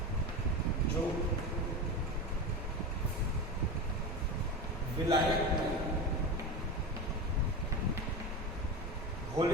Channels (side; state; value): both; normal; correlation 0.23